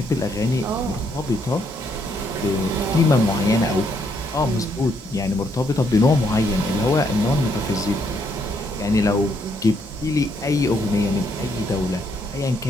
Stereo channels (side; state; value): both; normal; correlation 0.73